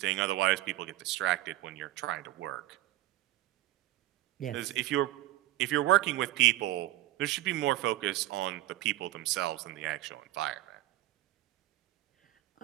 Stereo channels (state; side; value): quieter; left; 16.0 dB